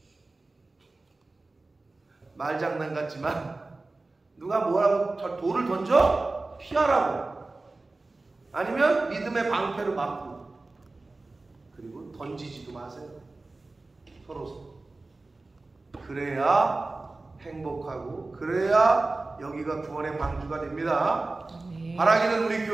말장난 같지만 누가 뭐라고 돌을 던져? 피하라고. 아니면 믿음의 방패로 막고. 그리고 던지지도 마세요. 서로. 그래야 행복하고, 그래야 여기가 구원의 방주가 됩니다. 바라기는 우리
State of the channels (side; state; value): left; quieter; 3.3 dB